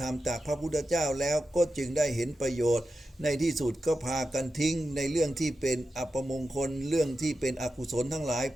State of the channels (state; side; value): normal; both; correlation 0.90